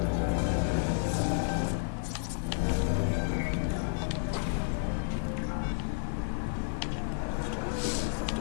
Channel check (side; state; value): right; silent; 57 dB below the other